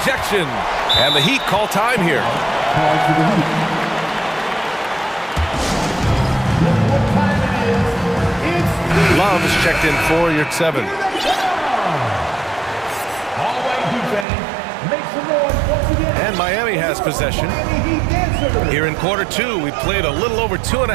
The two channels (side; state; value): left; drops out; at 14.2 s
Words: And the Heat call time here. Love is checked in for Yurtseven. And Miami has possession. Here in quarter 2, we played a little over